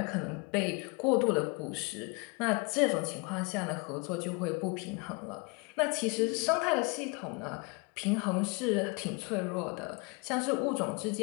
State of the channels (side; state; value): right; quieter; 30.3 dB